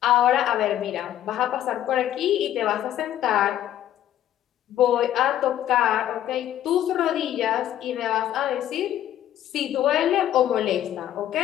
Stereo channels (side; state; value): right; quieter; 11.9 dB